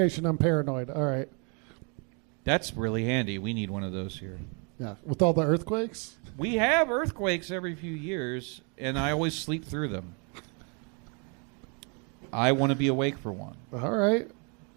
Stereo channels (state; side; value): quieter; left; 35.9 dB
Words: I'm paranoid. All right. That's really handy. We need one of those here. Yeah, with all the earthquakes? We have earthquakes every few years, and I always sleep through them. I want to be awake for one. All right.